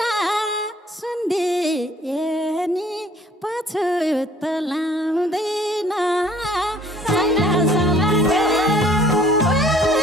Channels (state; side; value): normal; both; correlation 0.57